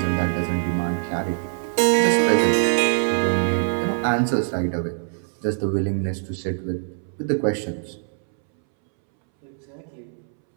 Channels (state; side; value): silent; left; 63 dB below the other